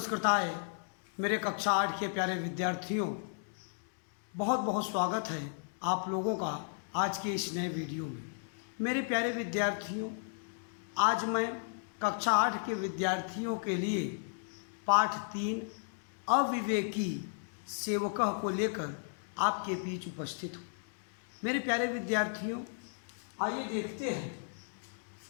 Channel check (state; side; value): silent; right; digital silence